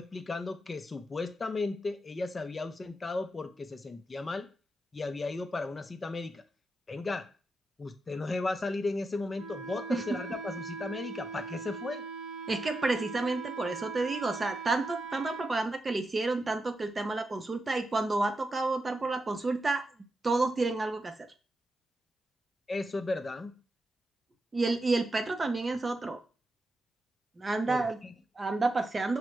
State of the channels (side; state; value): both; normal; correlation 0.87